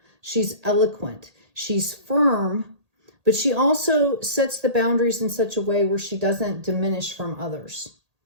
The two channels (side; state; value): left; late; 1.8 ms